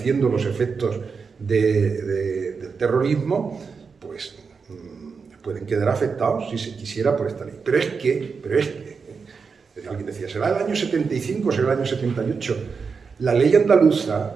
los efectos del terrorismo, pues pueden quedar afectados, si se quisiera, por esta ley. Pero es que alguien decía, ¿será el año 75 o será el año 78? La ley andaluza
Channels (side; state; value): left; quieter; 5.3 dB